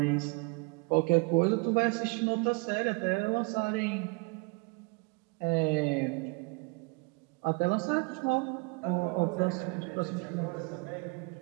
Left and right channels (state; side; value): quieter; left; 29.4 dB